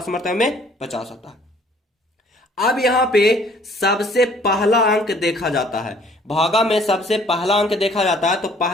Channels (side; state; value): both; normal; correlation 0.58